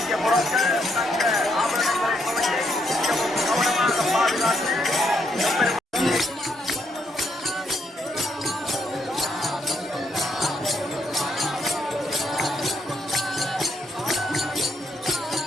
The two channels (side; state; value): both; normal; correlation 0.75